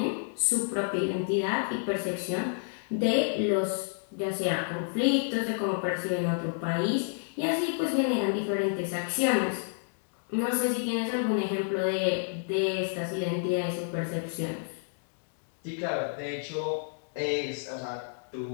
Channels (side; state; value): right; silent; digital silence